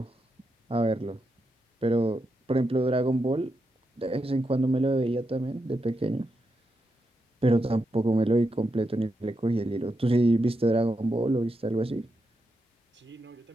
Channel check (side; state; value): both; normal; correlation 0.85